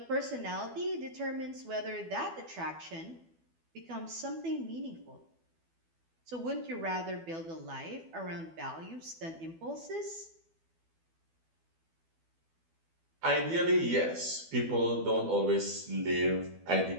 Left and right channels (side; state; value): left; late; 12 ms